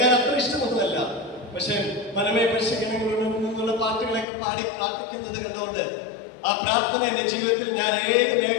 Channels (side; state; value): right; drops out; at 4.2 s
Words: അത്ര ഇഷ്ടമൊന്നുമല്ല. പക്ഷെ മനമേ പരിശീലനങ്ങളുള്ള പാട്ടുകളൊക്കെ പാടി പ്രാർത്ഥിക്കുന്നത് കണ്ടുകൊണ്ട് ആ പ്രാർത്ഥന എന്റെ ജീവിതത്തിൽ ഞാൻ ഏത്